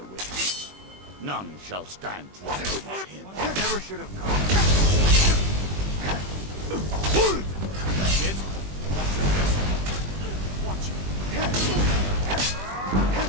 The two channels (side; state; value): left; late; 21 ms